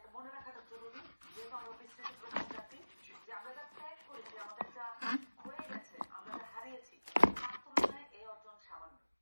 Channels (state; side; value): inverted; both; correlation -1.00